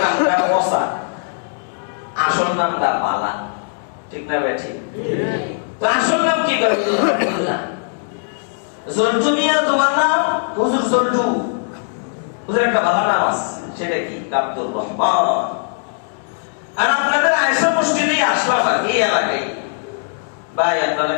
নামটা বসা, আসল নামটা পালা। ঠিক না বেঠি? তো আসল নাম কি করে? জল্টু মিয়া তোমার নাম? হুজুর জল্টু। হুজুর একটা ভালো নাম আছে, সেটা কি? আব্দুর রহমান। আর আপনাদের আয়েশা মসজিদে আসলাম আর এই এলাকায়, ভাই আপনারা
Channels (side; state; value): right; silent; digital silence